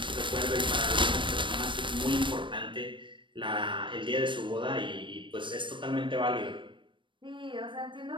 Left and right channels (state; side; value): late; left; 0.24 ms